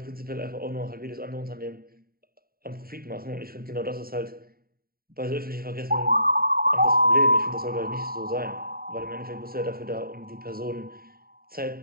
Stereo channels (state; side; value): late; left; 0.43 ms